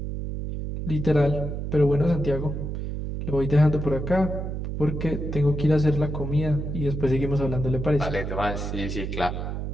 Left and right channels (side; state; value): right; noise; hum, 4 dB below the sound